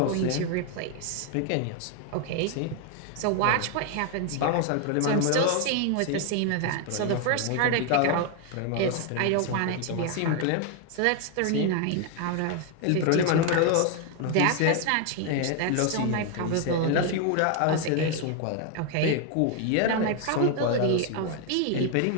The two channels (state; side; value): different; both; correlation 0.01